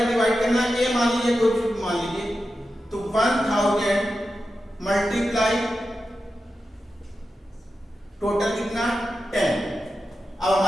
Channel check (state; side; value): normal; both; correlation 0.90